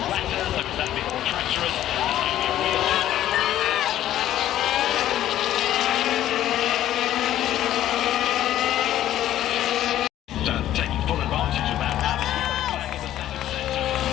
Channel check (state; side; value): quieter; right; 12.6 dB